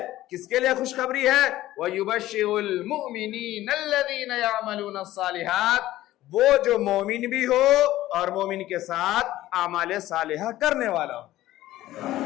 کس کے لیے خوشخبری ہے؟ وَيُبَشِّرُ الْمُؤْمِنِينَ الَّذِينَ يَعْمَلُونَ الصَّالِحَاتِ، وہ جو مومن بھی ہو اور مومن کے ساتھ اعمال صالحہ کرنے والا ہو،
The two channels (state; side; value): quieter; right; 15.2 dB